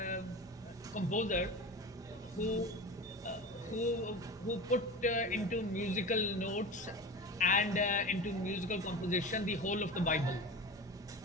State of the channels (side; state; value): both; normal; correlation 0.30